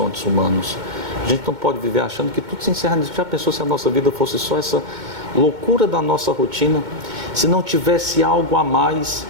humanos. A gente não pode viver achando que tudo se encerra nisso. Já pensou se a nossa vida fosse só essa loucura da nossa rotina? Se não tivesse algo a mais,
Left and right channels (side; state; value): left; late; 2.2 ms